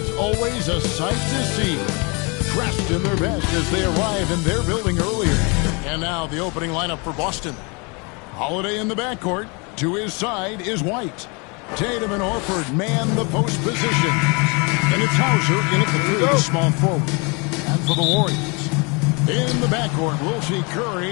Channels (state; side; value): quieter; right; 30.7 dB